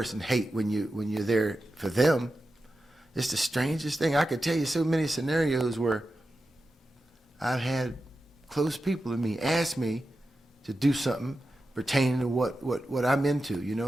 hate when you're there for them. It's the strangest thing. I could tell you so many scenarios where I've had close people to me ask me to do something pertaining to what I'm into. You know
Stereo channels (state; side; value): normal; both; correlation 0.91